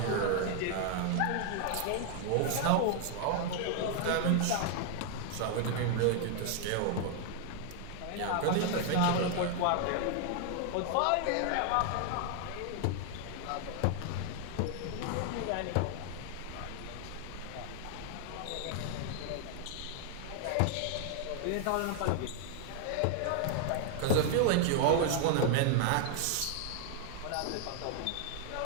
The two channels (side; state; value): both; different; correlation 0.00